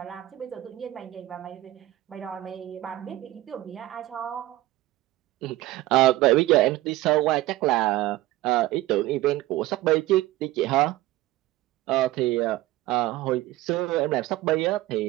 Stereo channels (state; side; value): quieter; left; 16.7 dB